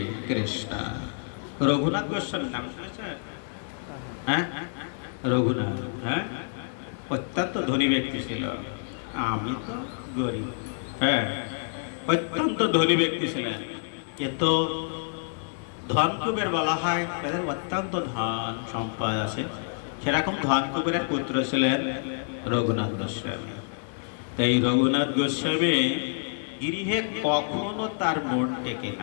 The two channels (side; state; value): right; silent; digital silence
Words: কৃষ্ণ। রঘুনাথ গোস্বামী নাম শুনেছেন? হ্যাঁ, রঘুনাথ, হ্যাঁ, অত্যন্ত ধনী ব্যক্তি ছিল। আমি তো গরিব। হ্যাঁ, অত্যন্ত ধনী ব্যক্তি ছিলেন, কিন্তু ধনকুবের বলা হয়, তাদের অত্যন্ত ধন সম্পদ আছে। সেরকম ধনকুবেরের পুত্র ছিলেন রঘুনাথ গোস্বামী। তাই রঘুনাথ গোস্বামী গৃহে কখনো তার মন টেকে